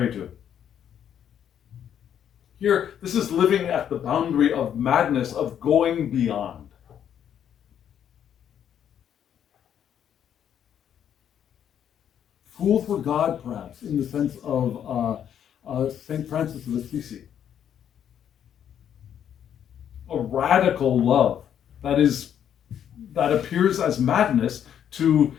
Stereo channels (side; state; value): right; quieter; 9.4 dB